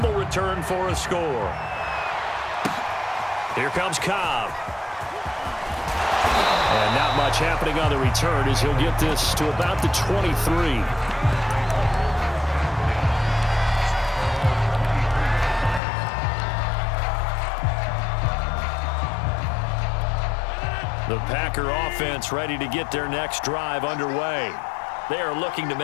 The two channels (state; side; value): drops out; right; at 15.8 s